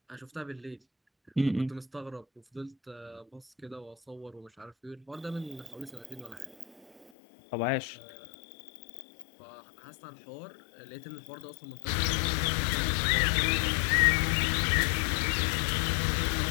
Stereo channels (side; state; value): right; drops out; at 7.1 s